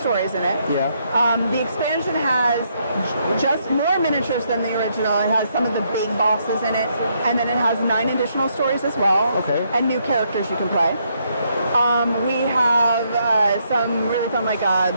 in it. Yeah. The expansion has just more miniatures than the original. It has some of the big bosses in it, and then it has 9 additional stories as well. Okay. And new characters you can play. We have some really fun, like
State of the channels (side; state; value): both; inverted; correlation -0.74